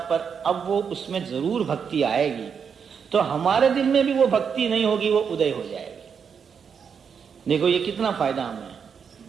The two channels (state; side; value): quieter; left; 6.7 dB